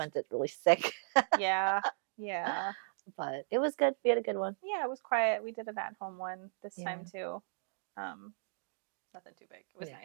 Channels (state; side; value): silent; left; digital silence